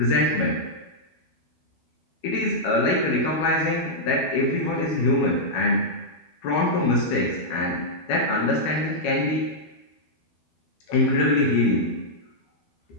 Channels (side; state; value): right; late; 12 ms